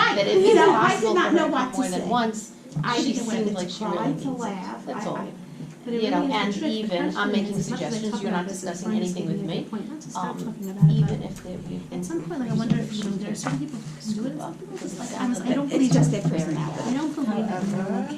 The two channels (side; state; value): both; identical; correlation 1.00